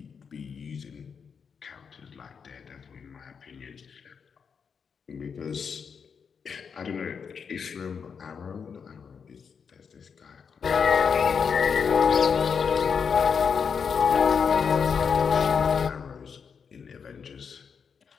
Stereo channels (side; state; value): right; quieter; 6.4 dB